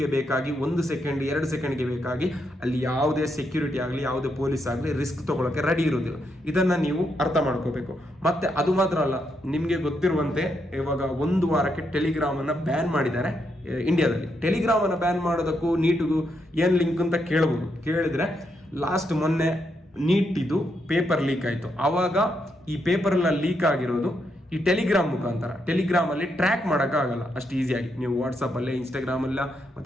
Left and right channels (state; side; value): normal; both; correlation 0.80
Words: ಬೇಕಾಗಿ 1 ಸೆಕೆಂಡ್ 2 ಸೆಕೆಂಡ್ಗೆ ಬೇಕಾಗಿ ಅಲ್ಲಿ ಯಾವುದೇ ಸೆಕ್ಯೂರಿಟಿ ಆಗಲಿ, ಯಾವುದೇ ಪೊಲೀಸ್ ಆಗಲಿ ರಿಸ್ಕ್ ತಗೊಳ್ಳೋಕೆ ರೆಡಿ ಇರೋದಿಲ್ಲ. ಇದನ್ನು ನೀವು ಅರ್ಥ ಮಾಡ್ಕೋಬೇಕು. ಮತ್ತೆ ಅದು ಮಾತ್ರ ಅಲ್ಲ, ನಿಮಗೆ ಗೊತ್ತಿರುವಂತೆ ಇವಾಗ 1 ವಾರಕ್ಕೆ ಟೆಲಿಗ್ರಾಮನ್ನು ಬ್ಯಾನ್ ಮಾಡಿದ್ದಾರೆ ಇಂಡಿಯಾದಲ್ಲಿ. ಟೆಲಿಗ್ರಾಮನ್ನು ಬ್ಯಾನ್ ಮಾಡೋದಕ್ಕೂ ನೀಟಿಗೂ ಏನು ಲಿಂಕ್ ಅಂತ ಕೇಳಿದ್ರೆ, ಲಾಸ್ಟ್ ಮೊನ್ನೆ ನೀಟಿದು ಪೇಪರ್ ಲೀಕ್ ಆಯಿತು. ಆವಾಗ ಈ ಪೇಪರೆಲ್ಲ ಲೀಕ್ ಆಗಿರೋದು ಈ ಟೆಲಿಗ್ರಾಮ್ ಮುಖಾಂತರ. ಟೆಲಿಗ್ರಾಮಲ್ಲಿ ಟ್ರ್ಯಾಕ್ ಮಾಡೋಕ್ಕಾಗಲ್ಲ ಅಷ್ಟು ಈಸಿಯಾಗಿ. ನೀವು ವಾಟ್ಸಪ್ಪಲ್ಲೇ, ಇನ್ಸ್ಟಾಗ್ರಾಮಲ್ಲ